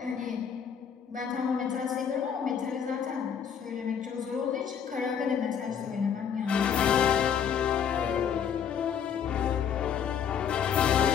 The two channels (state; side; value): quieter; right; 7.8 dB